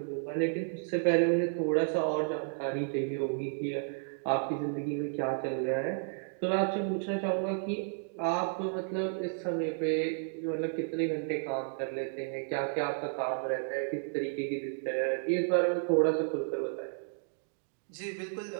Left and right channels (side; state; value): left; silent; digital silence